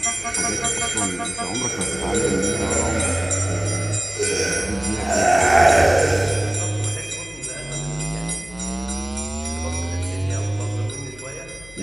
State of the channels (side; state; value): left; noise; hum, 21 dB below the sound